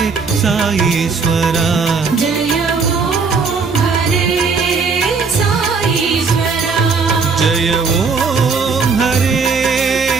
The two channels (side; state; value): left; quieter; 4.9 dB